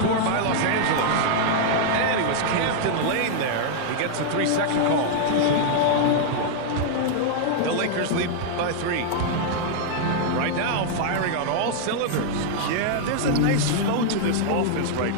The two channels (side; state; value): both; different; correlation -0.01